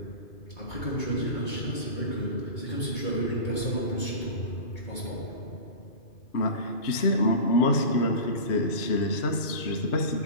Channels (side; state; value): right; late; 2.5 ms